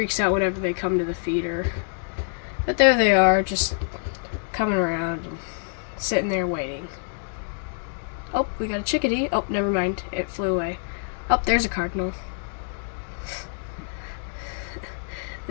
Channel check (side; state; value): right; silent; digital silence